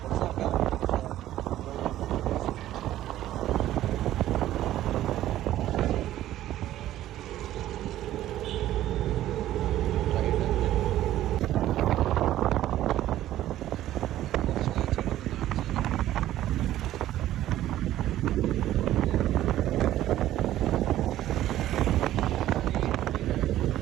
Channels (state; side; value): quieter; left; 13.5 dB